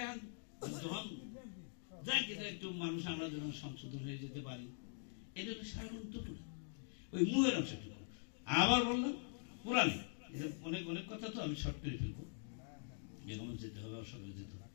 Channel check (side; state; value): right; silent; digital silence